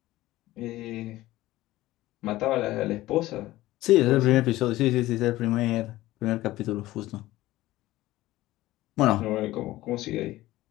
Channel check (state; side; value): quieter; right; 16.8 dB